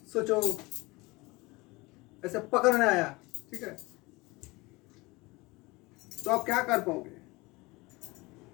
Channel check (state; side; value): quieter; right; 23.4 dB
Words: सोचो ऐसे पकड़ने आया, ठीक है, तो आप क्या कर पाओगे?